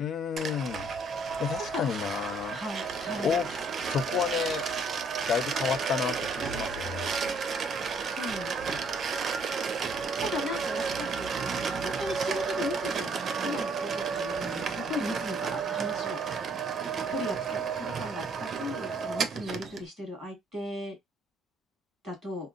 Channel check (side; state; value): both; normal; correlation 0.64